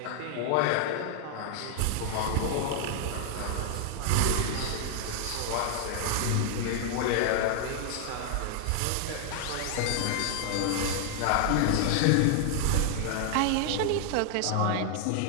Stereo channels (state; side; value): different; both; correlation 0.00